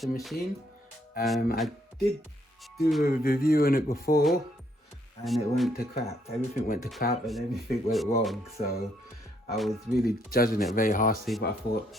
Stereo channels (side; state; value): both; normal; correlation 0.71